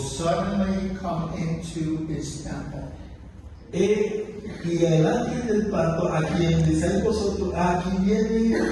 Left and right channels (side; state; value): both; identical; correlation 1.00